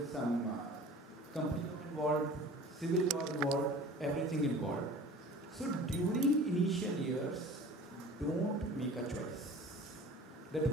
some company involved, civil law involved, everything involved. So during initial years, don't make a choice that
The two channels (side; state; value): both; normal; correlation 0.43